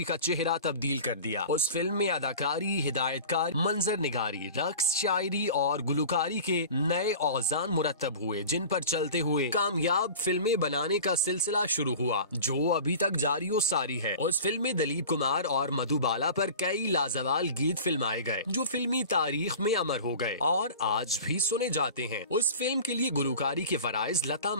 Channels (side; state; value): both; inverted; correlation -0.38